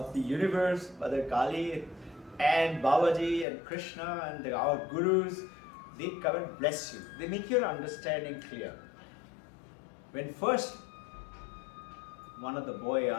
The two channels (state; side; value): drops out; right; at 3.5 s